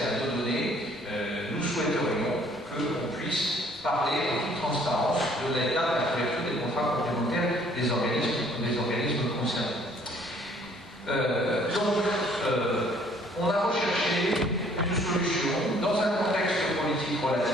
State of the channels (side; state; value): both; normal; correlation 0.60